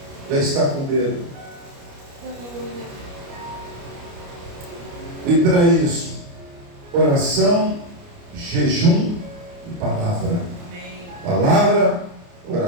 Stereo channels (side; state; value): left; late; 29 ms